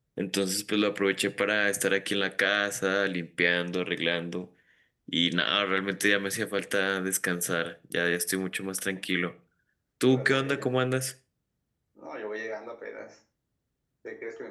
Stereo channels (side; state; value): both; identical; correlation 1.00